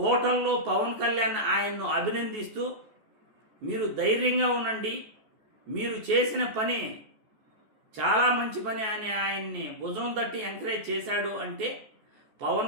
పవన్ కళ్యాణ్ ఆయన్ను అభినందిస్తూ మీరు ధైర్యంగా ఉండండి, మీరు చేసిన పని చాలా మంచి పని అని ఆయన్ని భుజం తట్టి ఎంకరేజ్ చేశాడు అంటే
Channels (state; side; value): late; left; 14 ms